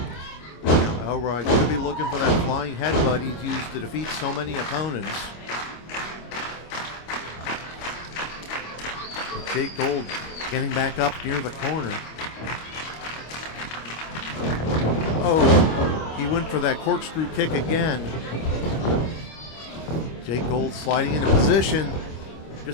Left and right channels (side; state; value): right; late; 25 ms